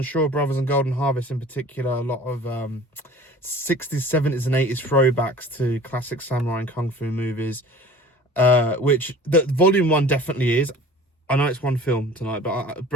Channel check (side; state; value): both; normal; correlation 0.44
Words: Shaw Brothers and Golden Harvest in particular. A lot of 60s, 70s and 80s throwbacks to classic samurai and kung fu movies. Which the Volume 1 definitely is. I know it's one film tonight, but